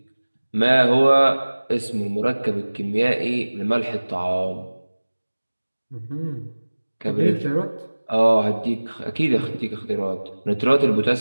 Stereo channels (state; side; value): inverted; both; correlation -1.00